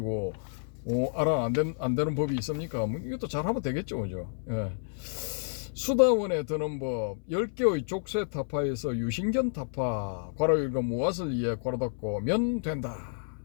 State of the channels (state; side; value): silent; right; 58 dB below the other